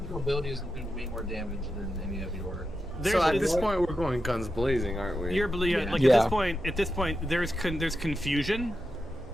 abilities do way more damage than any of your. So at There's- this point, we're going guns blazing, aren't we? You're Yeah. like Yeah. at this point there's confusion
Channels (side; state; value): both; normal; correlation 0.89